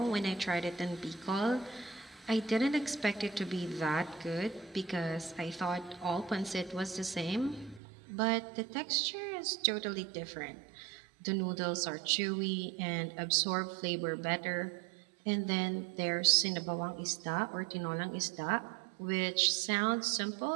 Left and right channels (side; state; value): left; drops out; at 7.8 s